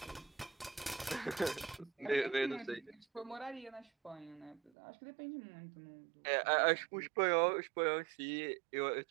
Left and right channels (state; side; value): drops out; left; at 4.7 s